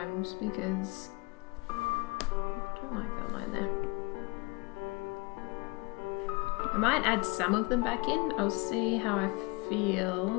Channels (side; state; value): right; quieter; 26.8 dB